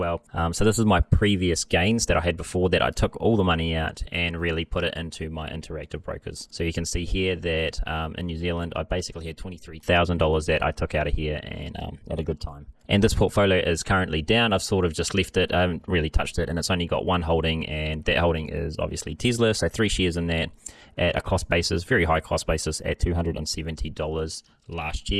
So this is my previous gains that I had before that. I took all the money out and really put it into my Interactive Brokers. So you can see here that in New Zealand, I basically had $23,000 that I took out of here and at a good time. And this portfolio is currently down. I've sort of just left it. I haven't really touched it, and it's only got one holding, and that holding is obviously Tesla. So 3 shares in that at a cost basis, very high cost basis at $270 last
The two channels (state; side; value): identical; both; correlation 1.00